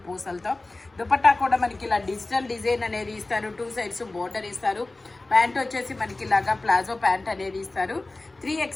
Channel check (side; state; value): right; quieter; 3.1 dB